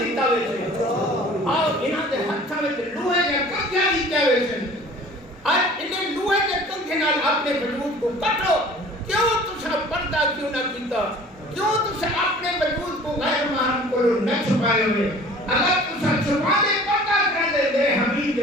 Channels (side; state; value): both; normal; correlation 0.47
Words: ہوئے سے اور انہاں دے ہتھا میں لوہے یا کبھیا دیتا ہوئے سے اور انہیں لوہے کے کنگھے نال اپنے وجود کو کٹو کیوں تسا پردہ کیوں نہ کیتا کیوں تسا اپنے وجود کو غیر محرم کو نہ چھپائے ہوئے اگر تسا چھپا دے پردہ کر دے دے حبیب